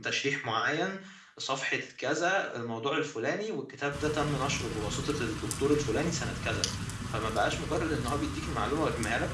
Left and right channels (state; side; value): identical; both; correlation 1.00